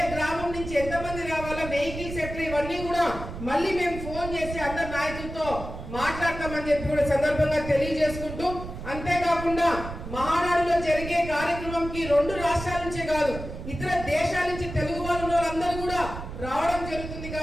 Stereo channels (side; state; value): right; noise; rumble, 9 dB below the sound